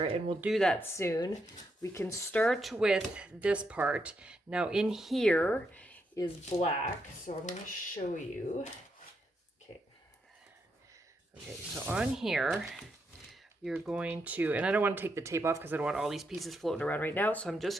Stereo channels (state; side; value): normal; both; correlation 0.80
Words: and we'll do that soon. We can start with this part. Now in here is black, so I'm going to show you. Okay, so on here, you're going to, and I don't want to take the tape off because I don't want all these pieces floating around right now, so I'm